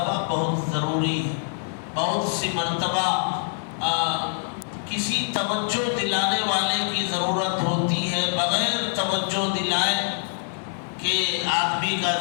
بہت ضروری ہے. بہت سی مرتبہ کسی توجہ دلانے والے کی ضرورت ہوتی ہے. بغیر توجہ دلائے کہ آدمی کا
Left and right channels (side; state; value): right; silent; digital silence